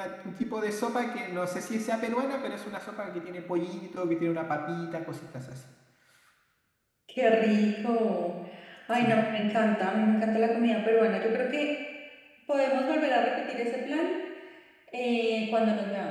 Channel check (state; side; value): identical; both; correlation 1.00